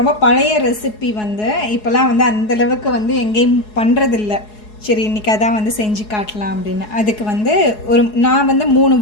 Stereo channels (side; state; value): right; late; 4.7 ms